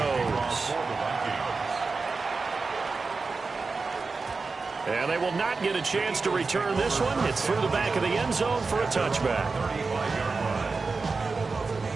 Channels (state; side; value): quieter; left; 4.2 dB